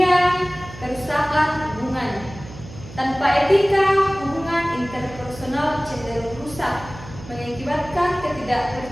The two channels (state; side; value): noise; right; hum, 16 dB below the sound